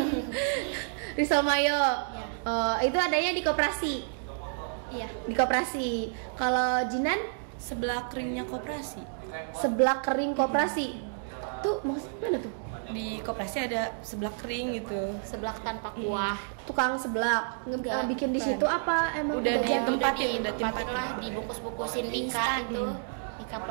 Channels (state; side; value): silent; left; digital silence